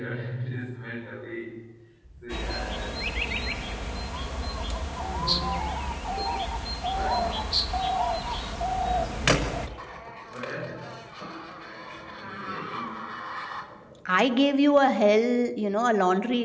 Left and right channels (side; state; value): both; identical; correlation 1.00